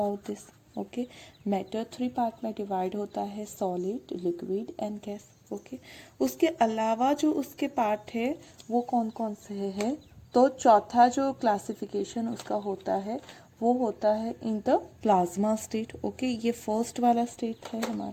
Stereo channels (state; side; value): identical; both; correlation 1.00